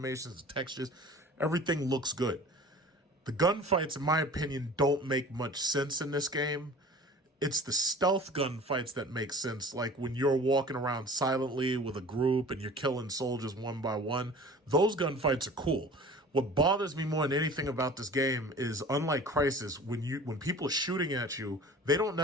the textures, everything looks good. The gunfights, in my opinion, don't make much sense in this game. It's the stealth gunfights that make sense, like when you're walking around silently with a group and you're killing soldiers one by one. Those gunfights are cool. What bothers me more than anything about this game is, unlike Crysis, when people are shooting at you, they don't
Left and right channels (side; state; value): both; normal; correlation 0.43